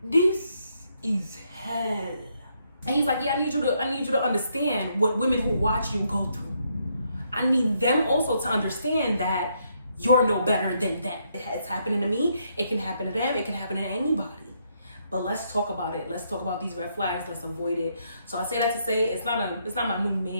this is hell. And he's like, yeah, I need you to understand what women who watch you go through. I need them also to understand that you're no better than them. It's happening to me. It can happen to them. It can happen to anybody. But let's talk about it. Let's talk about these red flags. Let's avoid it. So I say that to say it's not my new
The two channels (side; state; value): both; inverted; correlation -0.75